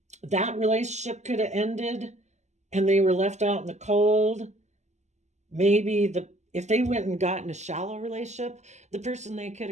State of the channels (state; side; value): late; left; 0.33 ms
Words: relationship could have ended and they were left out in the cold, maybe if they went and got in a shallow relationship, the person they could